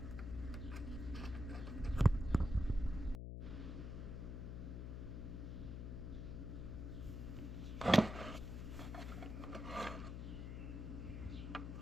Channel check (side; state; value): left; noise; hum, 5 dB below the sound